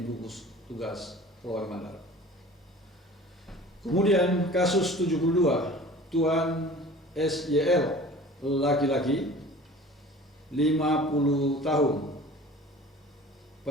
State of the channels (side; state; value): both; normal; correlation 0.43